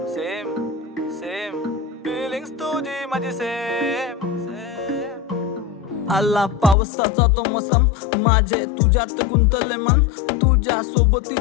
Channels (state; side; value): drops out; right; at 6.8 s